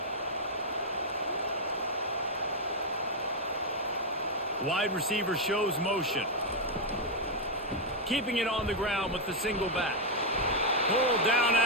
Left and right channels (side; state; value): both; normal; correlation -0.01